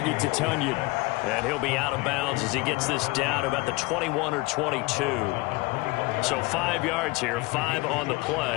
to Tunyon. And he'll be out of bounds as he gets this down about the 21 or 22. So 5 yards here, 5 on the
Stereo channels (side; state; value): right; quieter; 23.8 dB